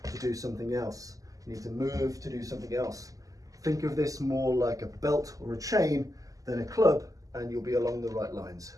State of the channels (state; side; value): late; left; 0.17 ms